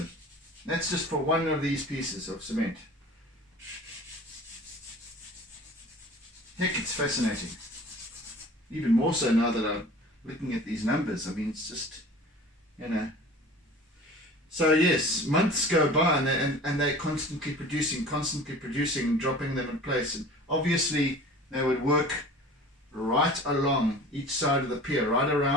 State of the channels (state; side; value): normal; both; correlation 0.42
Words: That's just for one of these pieces of cement. Heck, it's fascinating. Even more so now that I'm looking at these numbers. I mean, it's just, So yes, months go by and they're constantly producing, dropping them in place. And obviously they would work right along each side of the pier, right